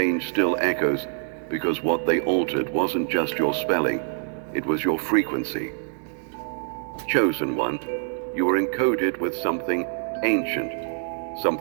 still echoes, because what they altered wasn't just your spelling, it was your frequency. Chosen one, you were encoded with something ancient,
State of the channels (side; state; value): left; silent; digital silence